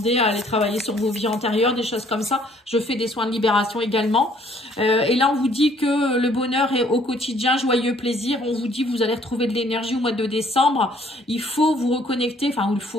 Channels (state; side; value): normal; both; correlation 0.61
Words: à aller travailler sur vos vies antérieures, des choses comme ça. Je fais des soins de libération également. Et là, on vous dit que le bonheur est au quotidien, joyeux plaisir. On vous dit que vous allez retrouver de l'énergie au mois de décembre. Il faut vous reconnecter, enfin, il